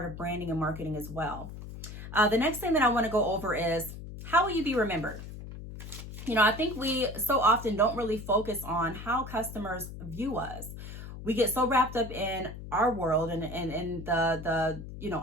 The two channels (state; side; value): noise; left; hum, 11 dB below the sound